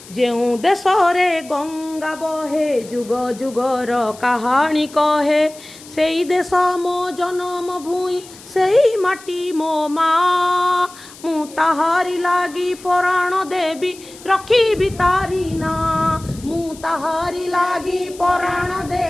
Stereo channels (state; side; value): noise; left; hiss, 20 dB below the sound